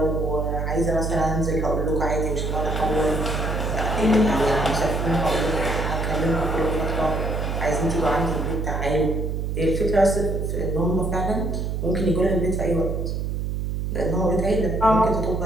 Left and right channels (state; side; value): noise; right; hum, 2 dB below the sound